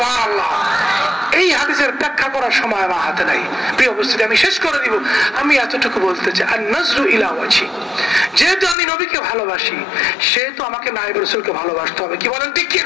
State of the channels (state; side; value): drops out; right; at 8.8 s